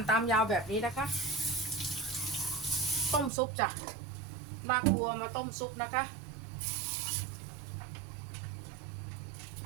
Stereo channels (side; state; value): left; drops out; at 3.3 s